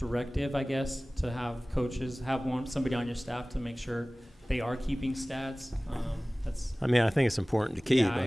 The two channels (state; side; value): normal; both; correlation 0.98